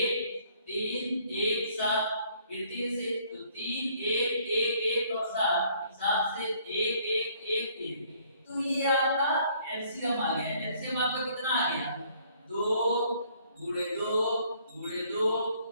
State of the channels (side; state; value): both; inverted; correlation -0.62